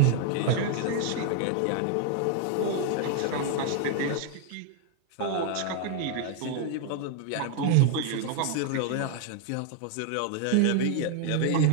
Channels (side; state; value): both; different; correlation 0.00